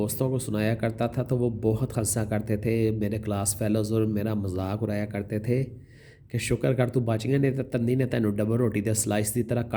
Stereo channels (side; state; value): both; identical; correlation 1.00